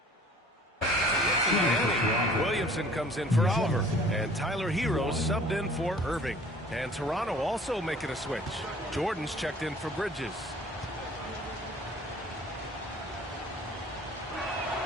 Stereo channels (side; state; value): both; normal; correlation 0.51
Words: Williamson comes in for Oliver, and Tyler Hero subbed in for Irving. And Toronto also making a switch. Jordan's checked in for Bridges.